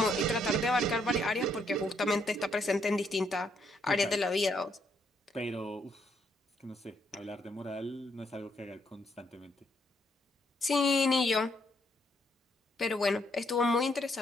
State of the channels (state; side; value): normal; both; correlation 0.73